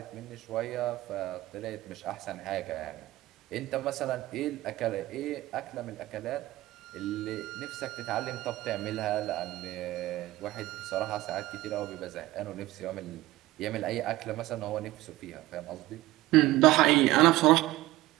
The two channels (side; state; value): left; quieter; 17.5 dB